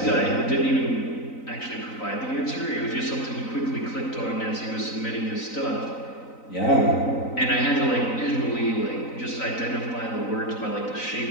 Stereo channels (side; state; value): right; late; 3.9 ms